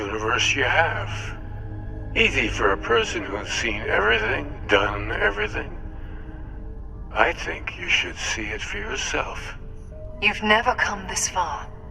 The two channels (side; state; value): both; identical; correlation 1.00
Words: you have. Easy for a person who's seen everything, done everything. I think you should see it for yourself. You've never come this far.